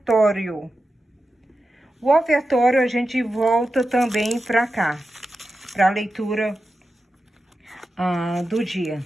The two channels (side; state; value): both; normal; correlation 0.91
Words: O ofertório a gente volta também pra cá, pra leitura do dia,